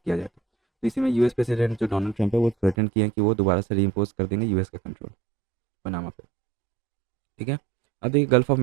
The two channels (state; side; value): drops out; left; at 2.8 s